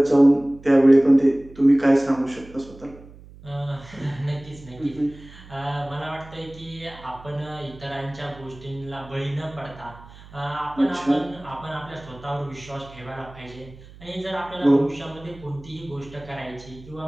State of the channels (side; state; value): right; noise; hum, 20 dB below the sound